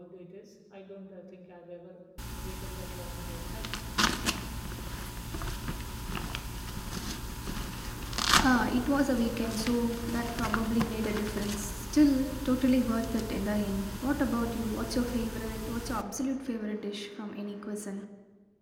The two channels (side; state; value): both; identical; correlation 1.00